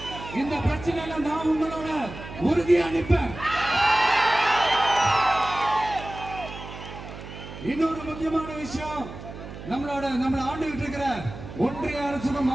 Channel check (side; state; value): right; noise; hum, 12 dB below the sound